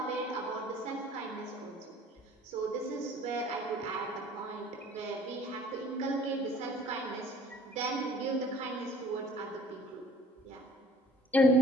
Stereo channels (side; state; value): both; normal; correlation 0.52